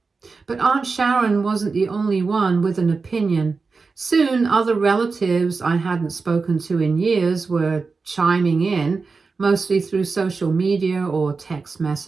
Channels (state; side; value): quieter; left; 4.4 dB